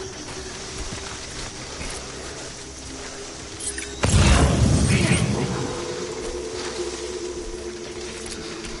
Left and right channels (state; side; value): identical; both; correlation 1.00